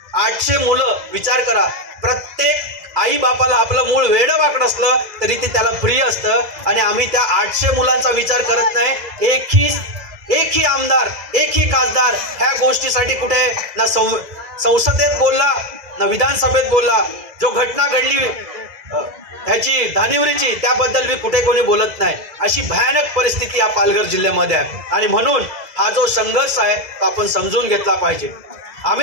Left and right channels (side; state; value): left; late; 2.0 ms